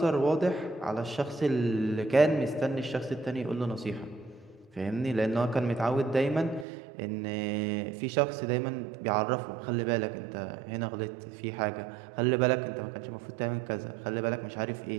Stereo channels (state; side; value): drops out; left; at 6.7 s